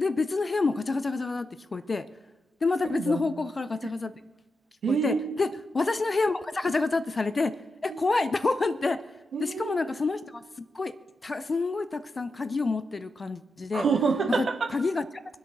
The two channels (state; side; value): normal; both; correlation 0.87